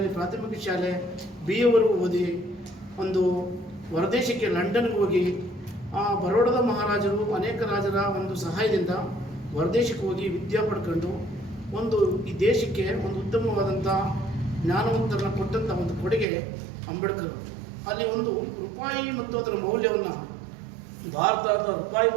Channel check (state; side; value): drops out; left; at 16.2 s